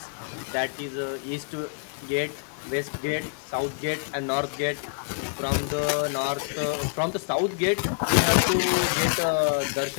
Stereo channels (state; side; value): silent; right; 60 dB below the other